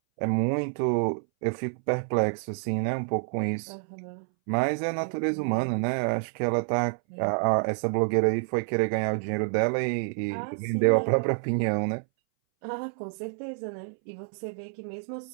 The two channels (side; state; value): left; silent; 59 dB below the other